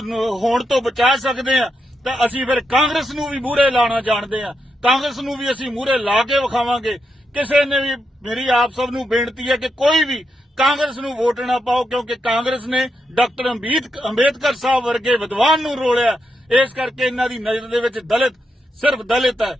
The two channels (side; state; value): both; normal; correlation 0.84